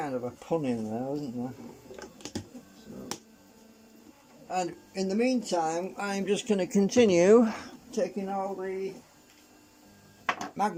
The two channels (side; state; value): both; identical; correlation 1.00